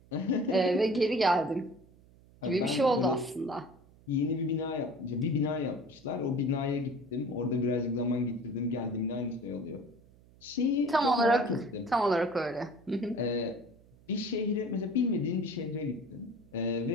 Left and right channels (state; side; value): noise; right; hum, 26 dB below the sound